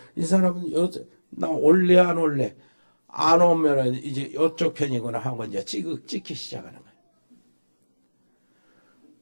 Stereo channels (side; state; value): both; inverted; correlation -1.00